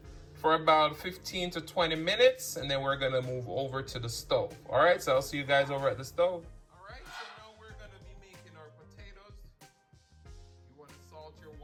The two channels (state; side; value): identical; both; correlation 1.00